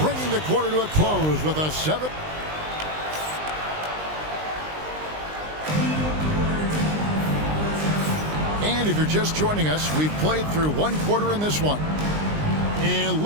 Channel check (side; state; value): left; late; 19 ms